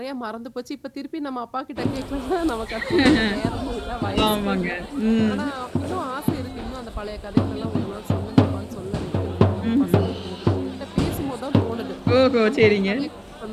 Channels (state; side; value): identical; both; correlation 1.00